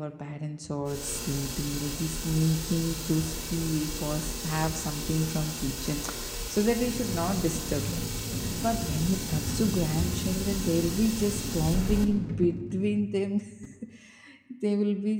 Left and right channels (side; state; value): both; identical; correlation 1.00